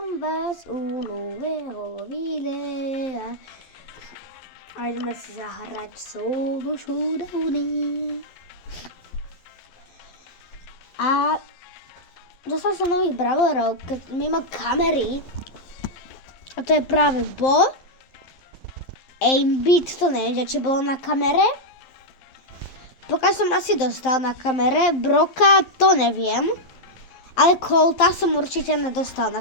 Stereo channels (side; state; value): right; late; 11 ms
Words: vás u nového videa. A ideme si zahrať solo showdowny. A dostal som nových brawlerov, mimo kamery. A to je práve Bo. Aimbit, to neviem, či bolo na kamere. Pokiaľ som asi dostal na kamere. Broka, to neviem. Ale Colta som určite nedostal na